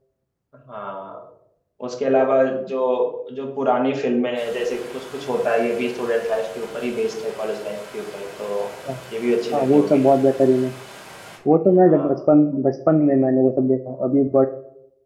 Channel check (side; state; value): both; identical; correlation 1.00